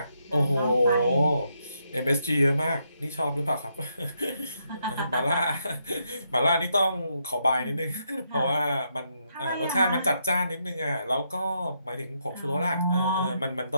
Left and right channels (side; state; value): both; inverted; correlation -0.79